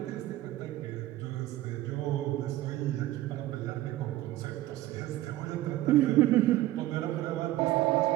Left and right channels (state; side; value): quieter; left; 15.7 dB